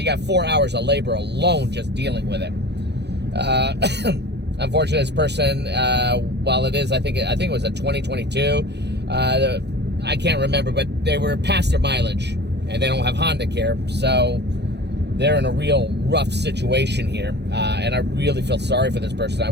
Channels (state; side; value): late; left; 0.49 ms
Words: got 4 hours of labor alone just dealing with it. Unfortunately, this person, while it is, I think it was a 2022. I can't remember, but they were past their mileage, and they don't have Honda Care, so they're in a real rough situation here, and I really feel sorry for this person. I